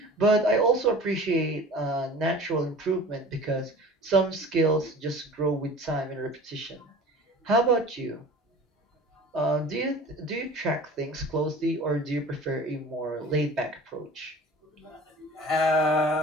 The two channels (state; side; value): normal; both; correlation 0.42